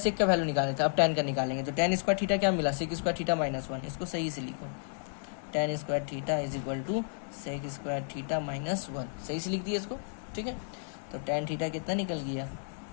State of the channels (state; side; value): silent; right; 56 dB below the other